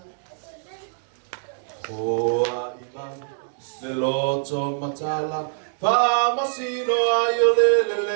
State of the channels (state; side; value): silent; left; digital silence